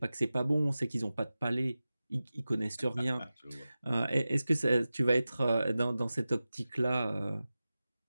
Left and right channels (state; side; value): inverted; both; correlation -0.96